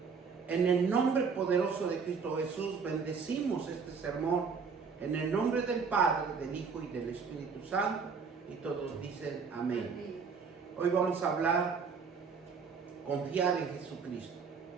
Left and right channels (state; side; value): quieter; left; 5.5 dB